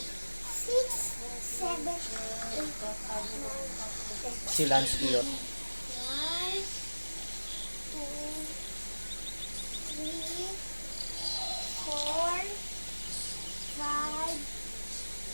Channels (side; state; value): both; inverted; correlation -1.00